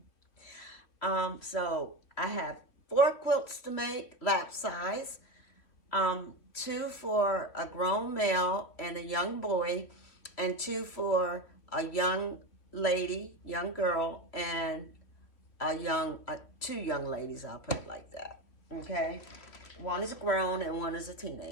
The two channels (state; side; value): late; right; 3.0 ms